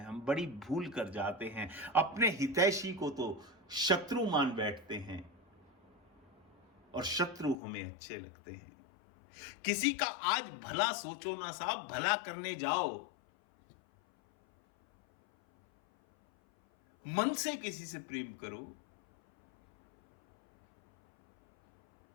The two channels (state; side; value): drops out; right; at 7.6 s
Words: हम बड़ी भूल कर जाते हैं, अपने हितैषी को तो शत्रु मान बैठते हैं और शत्रु हमें अच्छे लगते हैं। किसी का आज भला सोचो ना साहब, भला करने जाओ, मन से किसी से प्रेम करो